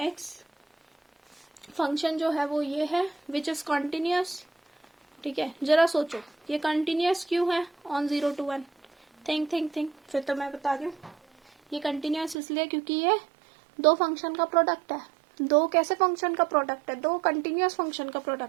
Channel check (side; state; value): left; drops out; at 12.4 s